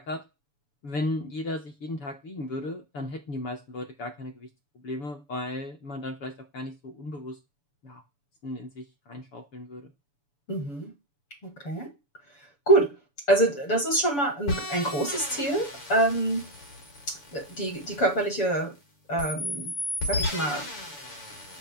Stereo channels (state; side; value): late; right; 7.0 ms